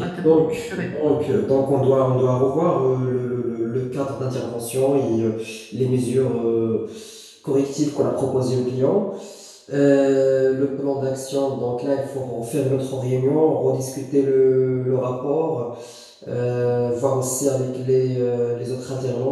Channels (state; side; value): identical; both; correlation 1.00